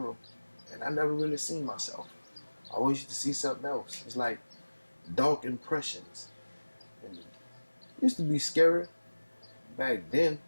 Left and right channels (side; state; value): both; inverted; correlation -1.00